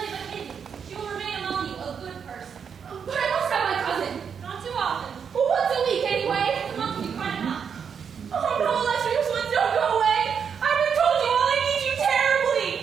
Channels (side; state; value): left; quieter; 7.0 dB